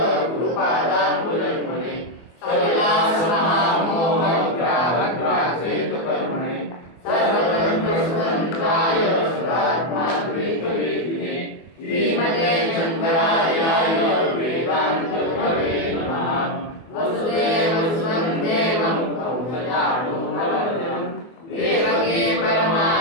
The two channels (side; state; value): right; late; 24 ms